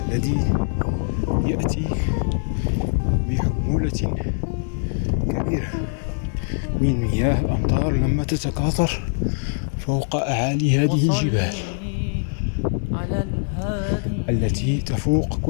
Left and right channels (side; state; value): right; silent; 64 dB below the other